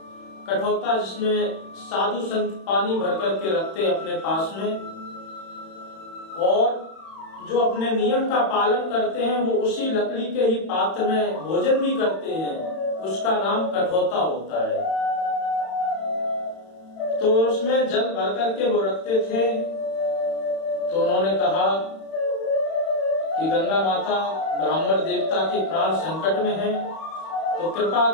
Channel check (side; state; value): right; late; 31 ms